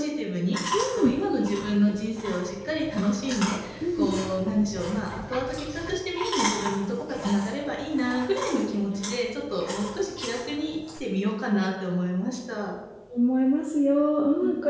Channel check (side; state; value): both; identical; correlation 1.00